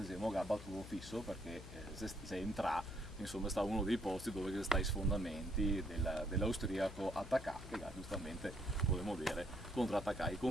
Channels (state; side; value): noise; left; hum, 13 dB below the sound